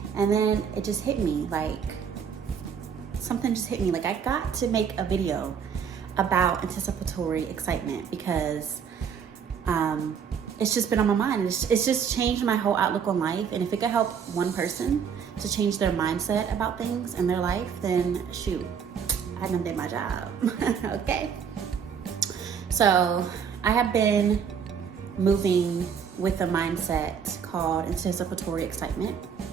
And then it just hit me, something just hit me. I got to make a video about anticipatory excitement because it's just been on my mind. It's just changed my whole outlook on life. And if it could help one person to change their mindset about things in their life, then shoot, I done did my job. Okay. So I have been moving with a mindset called anticipatory excitement.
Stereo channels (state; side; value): quieter; left; 7.1 dB